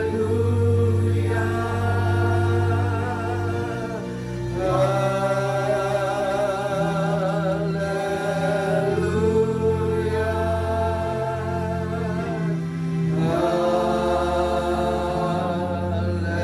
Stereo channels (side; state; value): both; identical; correlation 1.00